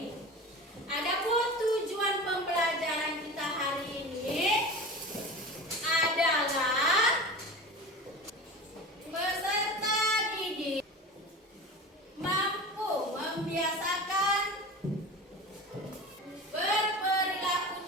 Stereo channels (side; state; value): both; normal; correlation 0.32